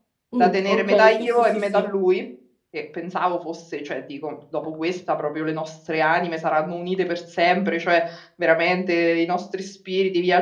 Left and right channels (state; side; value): identical; both; correlation 1.00